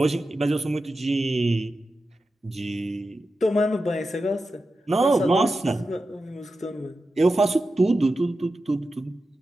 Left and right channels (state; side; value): normal; both; correlation 0.91